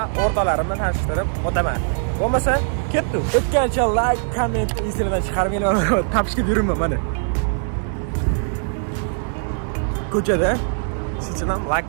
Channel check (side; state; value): left; silent; 60 dB below the other